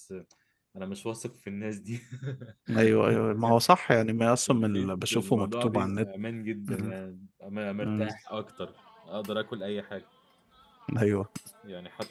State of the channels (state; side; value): identical; both; correlation 1.00